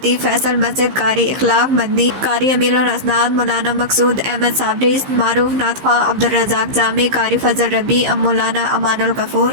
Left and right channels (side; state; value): left; late; 15 ms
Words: فیصل مسجد، قاری اخلاق مدنی، قاری امیر الاسناد مولانا مقصود احمد صابری، معروف نعت خواں عبدالرزاق جامی، قاری فضل ربیع، مولانا امان الغفور،